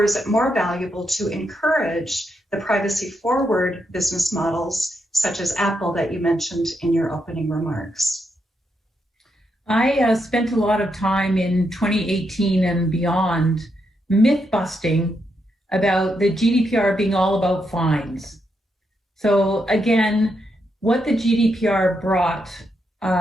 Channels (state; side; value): normal; both; correlation 0.81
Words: is it more valuable to encourage the privacy-forward business models, such as Apple that you mentioned in your opening remarks? I spent a lot of time in 2018 and beyond myth-busting about the GDPR being all about fines. So again, what the GDPR brought